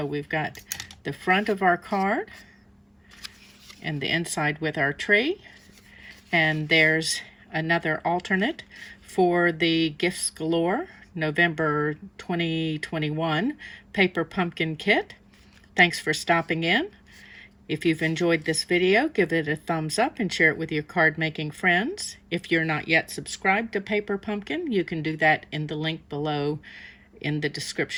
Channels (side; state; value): both; identical; correlation 1.00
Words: we've got the front of our card and the inside with our tree. And there's another alternate for the Gifts Galore November 2021 Paper Pumpkin Kit. Thanks for stopping in. If you've enjoyed this video, give it a thumbs up and share it with your card making friends. If you're not yet subscribed to Paper Pumpkin, you can do that in the link below in the